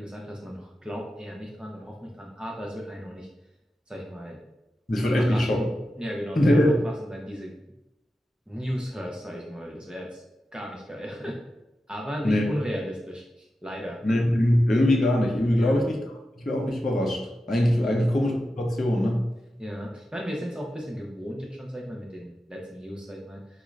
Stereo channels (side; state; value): both; normal; correlation 0.91